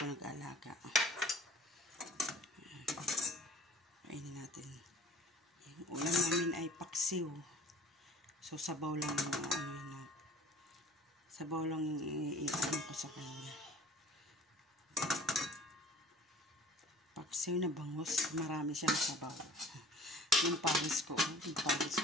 nag-alaga. Kainin natin. Yung ulam namin ay paksiw. So, sabaw lang yung sabaw lang yung i-ano ko sa kanya. Paksiw na bangus. Marami siyang sabaw. Yung pawis ko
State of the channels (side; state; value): both; normal; correlation 0.49